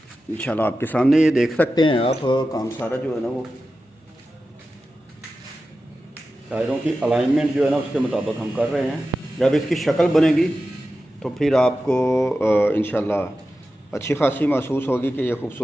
इंशाल्लाह आपके सामने ये देख सकते हैं आप, काम सारा जो है ना वो टायरों की अलाइनमेंट जो है ना उसके मुताबिक हम कर रहे हैं। जब इसकी शक्ल बनेगी तो फिर आपको इंशाल्लाह अच्छी खासी महसूस होगी कि ये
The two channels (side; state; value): both; normal; correlation 0.93